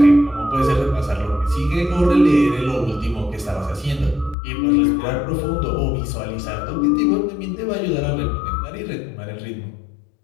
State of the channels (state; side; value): drops out; right; at 4.4 s